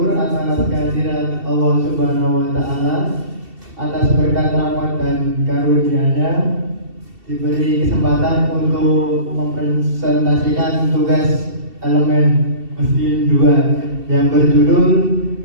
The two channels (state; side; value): late; left; 2.7 ms